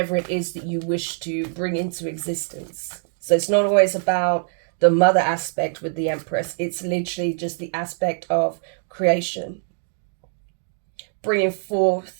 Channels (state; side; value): silent; left; digital silence